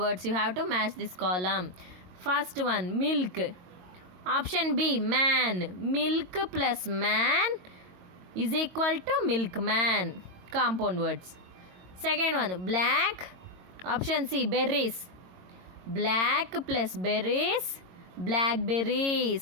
You have to match this column. First one, milk. Option B, man. Milk plus man is equal to milkman. Compound words. Second one, black. Option C, berries. Black plus berries,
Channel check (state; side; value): late; left; 22 ms